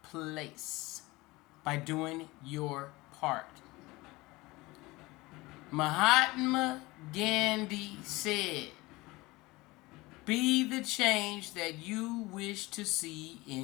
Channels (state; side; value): quieter; right; 21.5 dB